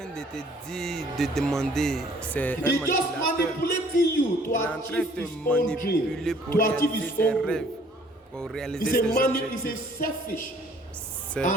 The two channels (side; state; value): both; normal; correlation 0.58